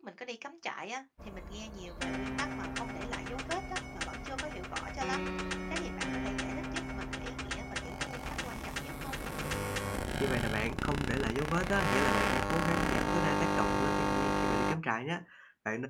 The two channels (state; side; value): identical; both; correlation 1.00